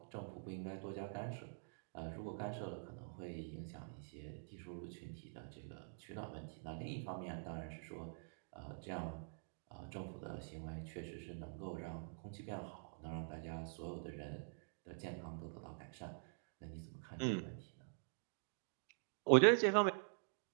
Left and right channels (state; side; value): silent; left; digital silence